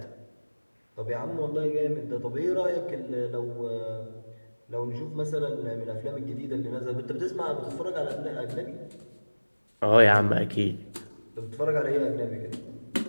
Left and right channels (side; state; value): both; inverted; correlation -1.00